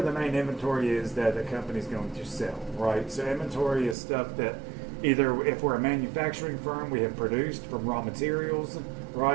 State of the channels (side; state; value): left; drops out; at 4.0 s